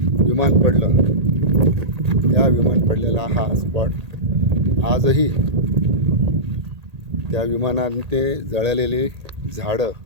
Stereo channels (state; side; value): late; left; 1.8 ms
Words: विमान पडलं त्या विमान पडलेला हा स्पॉट आजही त्या विमानाने ते जळलेली झाडं,